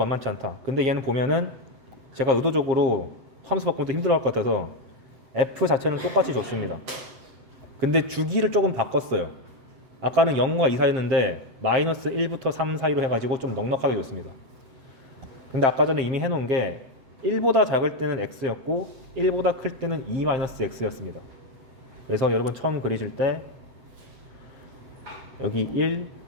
않다. 근데 얘는 보면은 제가 의도적으로 함수 바꾸면서 힘들어할 것 같아서 f 자체는 똑같이 줬습니다. 근데 주기를 조금 바꿨어요. 아까는 0과 2 사이였는데 마이너스 1부터 3 사이로 해가지고 좀 넉넉하게 줬습니다. 근데 아까 전에 이미 해놓은 게 1보다 작을 때는 x였고 1보다 클 때는 2-x였습니다. 그래서 여러분 처음 그리실 때 여기 1,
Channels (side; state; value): left; late; 7.6 ms